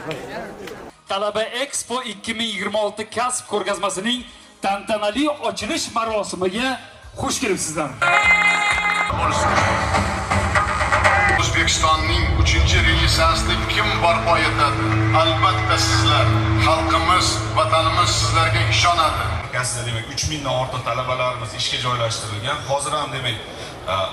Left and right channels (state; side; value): identical; both; correlation 1.00